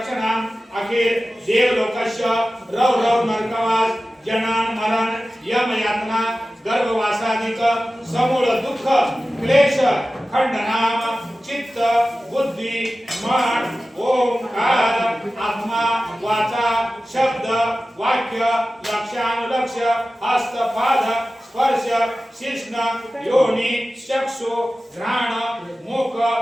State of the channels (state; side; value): normal; both; correlation 0.95